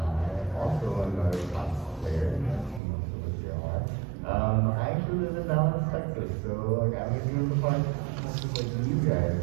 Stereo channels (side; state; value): left; drops out; at 2.8 s